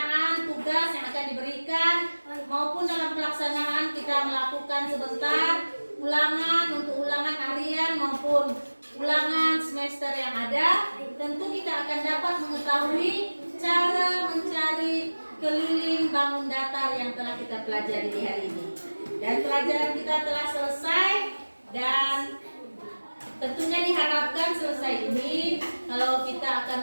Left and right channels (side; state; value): both; inverted; correlation -1.00